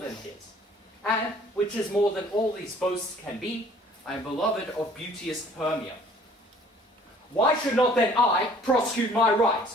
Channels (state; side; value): normal; both; correlation 0.55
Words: his. And, which is more than all these boasts can be, I am beloved of beauteous Hermia. Why should not then I prosecute my right?